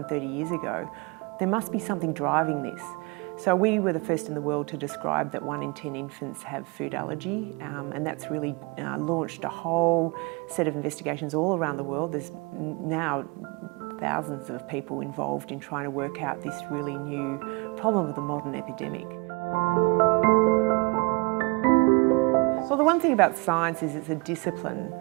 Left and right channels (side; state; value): left; quieter; 28.6 dB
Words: 30 years ago. There must be something driving this. So we were the first in the world to describe that 1 in 10 infants have food allergy, and that's really launched a whole set of investigations all around the world. There's now thousands of people involved in trying to work out this really new problem of the modern epidemic. Well, the one thing about science is it's a discipline,